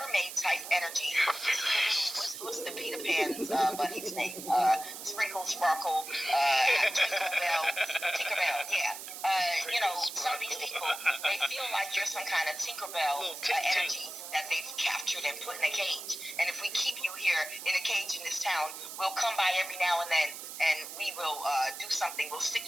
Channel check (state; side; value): noise; right; hiss, 10 dB below the sound